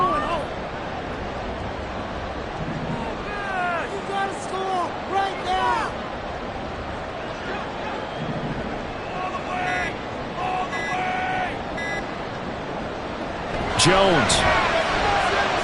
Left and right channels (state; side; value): identical; both; correlation 1.00